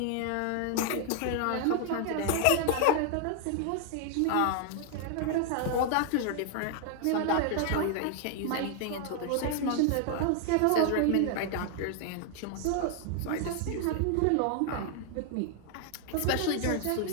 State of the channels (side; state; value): both; different; correlation 0.00